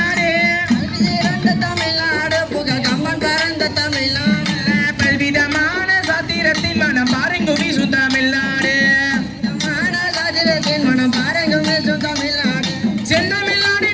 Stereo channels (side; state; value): both; identical; correlation 1.00